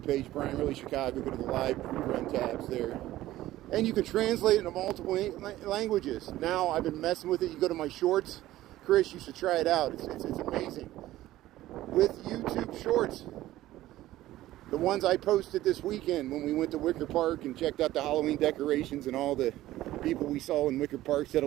page, Brian Really Chicago, go to the live rerun tabs there. And you can translate it into multiple languages. Now I've been messing with it. You go to my shorts. Chris, you should try it out. It's amazing. With YouTube shorts. The ones I posted this weekend when we went to Wicker Park and checked out the Halloween decorations and all the people we saw in Wicker Park said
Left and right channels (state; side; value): quieter; left; 15.3 dB